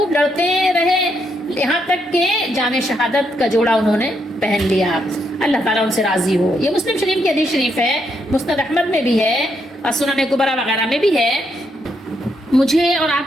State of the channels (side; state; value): both; normal; correlation 0.77